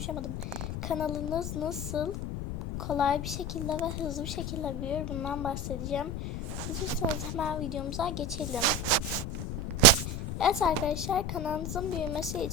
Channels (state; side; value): noise; left; rumble, 4 dB below the sound